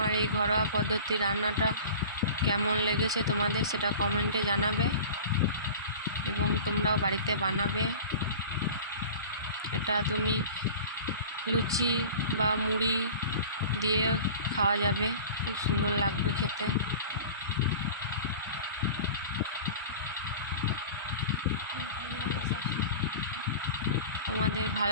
এই ঘরোয়া পদ্ধতি রান্নাটা কেমন লেগেছে তোমাদের সেটা কমেন্টে জানাবে এবং তোমরাও বাড়িতে বানাবে। এটা তুমি লুচি বা মুড়ি দিয়ে খাওয়া যাবে, খুব সুন্দর লাগবে খেতে। তোমাদের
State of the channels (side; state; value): both; inverted; correlation -0.38